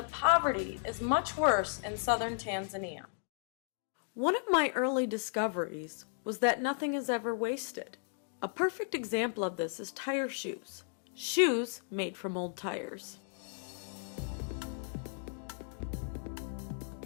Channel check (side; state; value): right; silent; digital silence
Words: poverty is much worse in southern Tanzania. One of my early discoveries was that nothing is ever wasted. A perfect example of this is tire shoes. Shoes made from old tires.